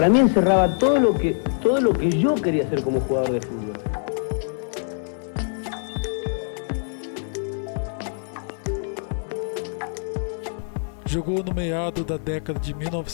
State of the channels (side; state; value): right; silent; digital silence